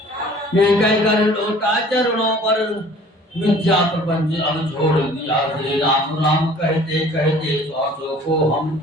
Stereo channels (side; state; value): both; normal; correlation 0.50